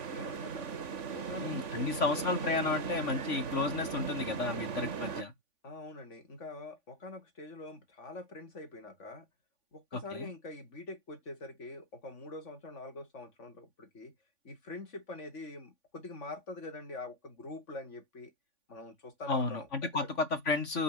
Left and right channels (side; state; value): right; late; 3.5 ms